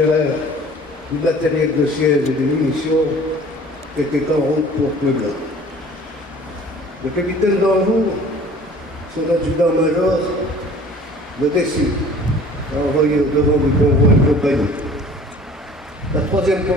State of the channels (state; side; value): normal; both; correlation 0.48